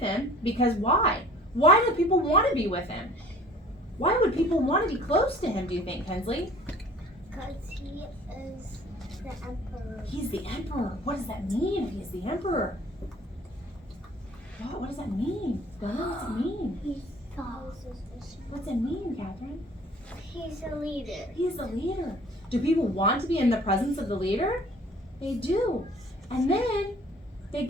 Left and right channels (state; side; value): normal; both; correlation 0.50